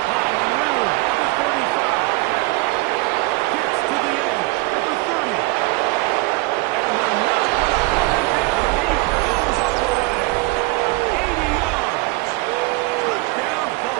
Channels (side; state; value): left; quieter; 22.9 dB